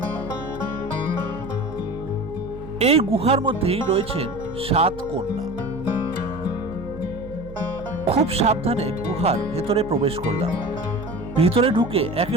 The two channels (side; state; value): right; noise; hum, 15 dB below the sound